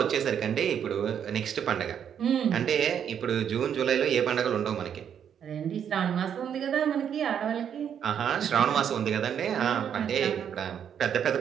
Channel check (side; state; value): left; quieter; 8.5 dB